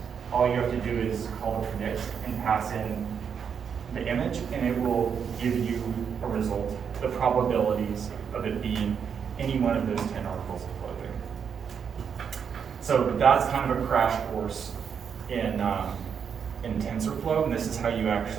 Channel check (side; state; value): left; quieter; 7.1 dB